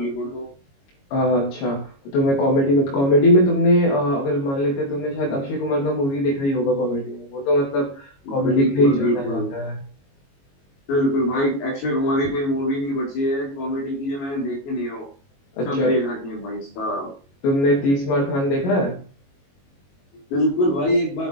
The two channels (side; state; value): right; late; 22 ms